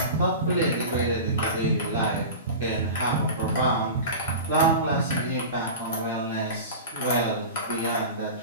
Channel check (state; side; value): inverted; both; correlation -0.31